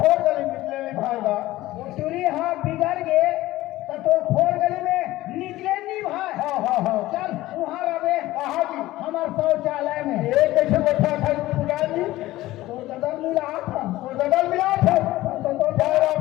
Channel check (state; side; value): quieter; right; 16.8 dB